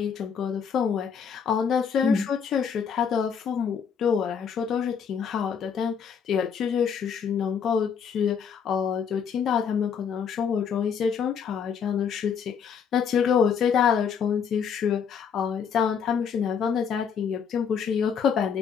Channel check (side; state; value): right; quieter; 7.1 dB